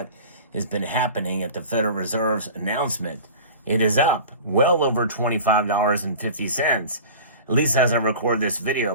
has been happening at the Federal Reserve's announcement. It is up well over $25.50. At least as I record this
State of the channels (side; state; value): both; inverted; correlation -0.38